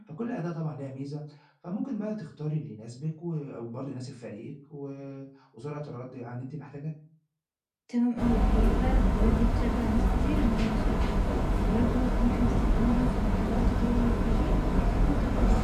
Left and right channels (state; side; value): identical; both; correlation 1.00